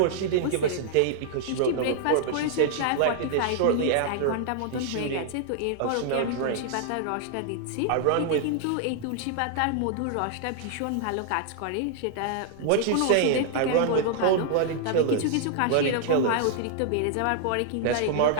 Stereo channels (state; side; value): different; both; correlation -0.01